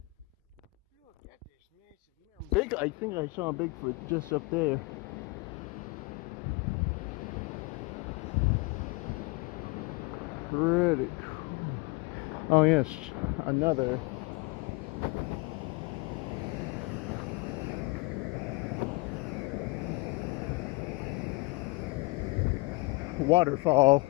look at this massive mountain. Big, I think I saw a Bigfoot just up there. Pretty cool. Oh yes, another. Waterfall.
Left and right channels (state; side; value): quieter; right; 25.2 dB